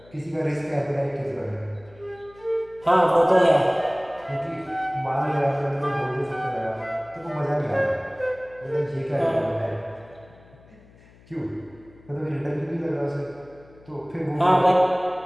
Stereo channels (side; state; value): left; noise; hum, 25 dB below the sound